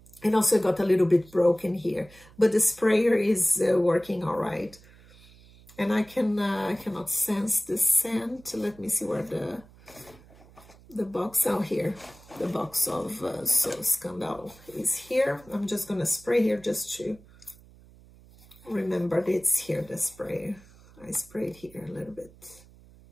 And also got a little bit broken here, but the sprayer is working all right. And I cannot sense the scent. Let me see where the box out here. The box of So Scandal is here. I'm just gonna spray here just to remember that it's here, the spray. I sprayed here a little bit.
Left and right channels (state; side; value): noise; right; hum, 24 dB below the sound